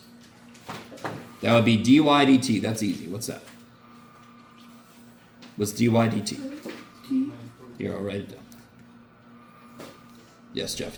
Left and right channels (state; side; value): identical; both; correlation 1.00